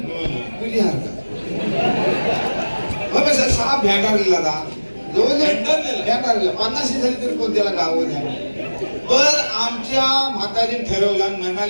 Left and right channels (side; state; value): both; inverted; correlation -1.00